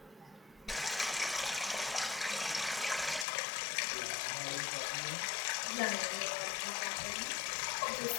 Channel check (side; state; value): right; drops out; at 3.2 s